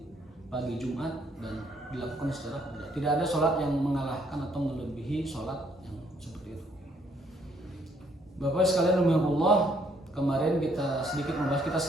pagi Jumat, dan dilakukan secara tidak ada sholat yang mengalahkan atau melebihi sholat seperti itu. Bapak sekalian rahimakumullah, kemarin kita sedikit membahas, kita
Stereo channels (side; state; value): both; normal; correlation 0.68